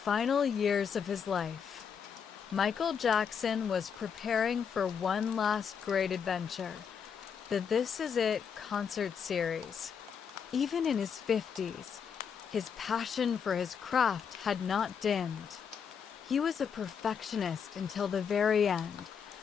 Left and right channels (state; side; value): quieter; right; 7.0 dB